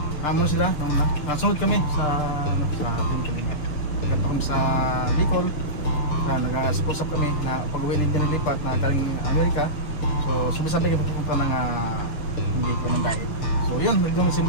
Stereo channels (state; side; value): late; right; 6.7 ms